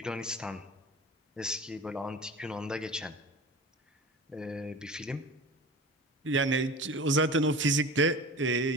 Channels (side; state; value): both; normal; correlation 0.35